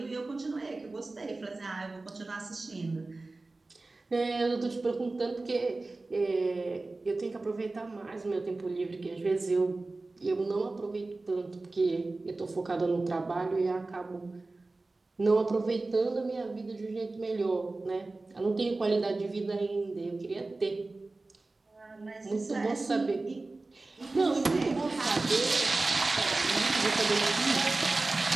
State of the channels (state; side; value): quieter; left; 3.3 dB